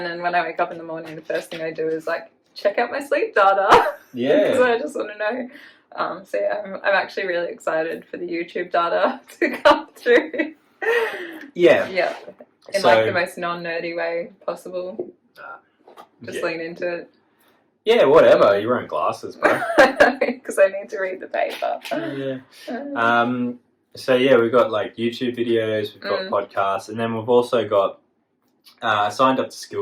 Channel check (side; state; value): both; identical; correlation 1.00